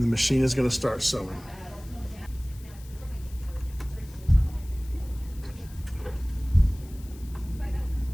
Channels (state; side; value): noise; left; hiss, 23 dB below the sound